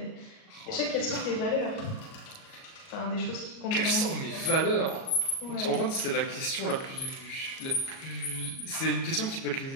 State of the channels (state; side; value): late; right; 37 ms